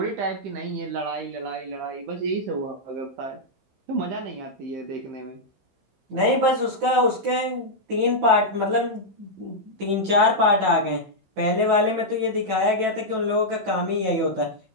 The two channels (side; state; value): left; late; 15 ms